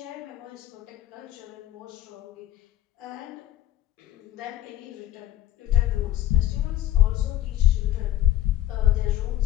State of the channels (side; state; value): right; quieter; 13.3 dB